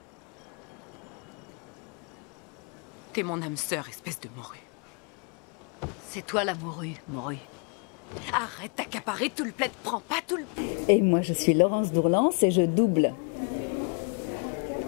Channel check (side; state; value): right; quieter; 39.2 dB